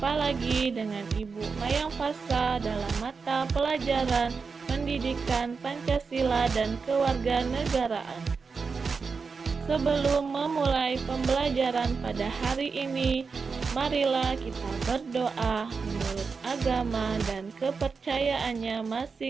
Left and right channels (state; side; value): quieter; left; 5.0 dB